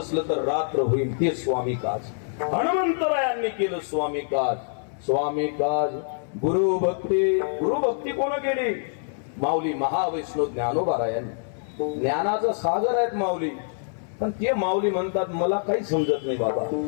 तर रात्र होईल, ते स्वामी काज. हनुमंतरायांनी केलं स्वामी काज. स्वामी काज गुरुभक्ती कोण केली? माऊली महावैष्णव ज्ञानोबारायांनी. ज्ञानाचा सागर आहेत माऊली, पण ते माऊली म्हणतात मला काही समजत नाही बाबा,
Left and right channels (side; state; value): right; silent; 59 dB below the other